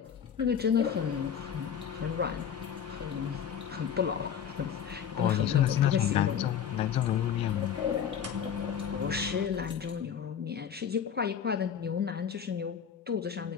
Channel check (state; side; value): quieter; right; 8.3 dB